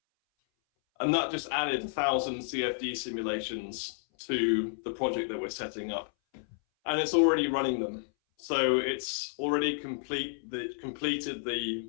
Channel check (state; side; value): silent; right; 57 dB below the other